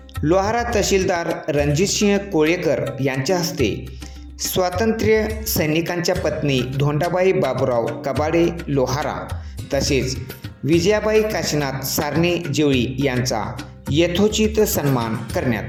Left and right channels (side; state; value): both; identical; correlation 1.00